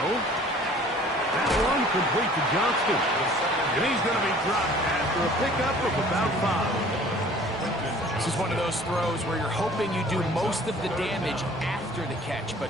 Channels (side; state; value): both; normal; correlation 0.51